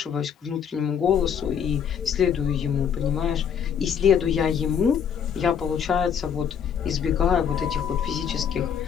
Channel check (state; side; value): quieter; right; 7.8 dB